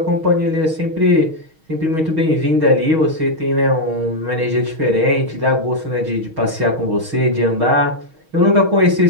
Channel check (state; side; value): late; left; 6.3 ms